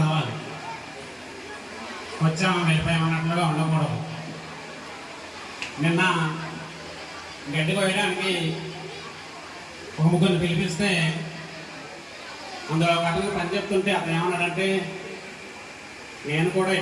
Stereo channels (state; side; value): identical; both; correlation 1.00